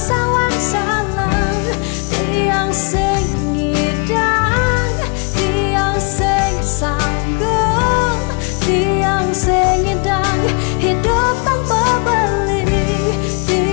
salang tiang sing ngidang tiang sing sanggup tiang sing ngidang hidup tanpa beli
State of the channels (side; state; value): right; quieter; 35.4 dB